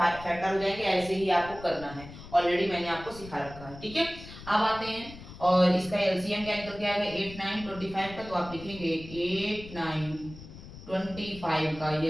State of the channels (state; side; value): noise; left; rumble, 15 dB below the sound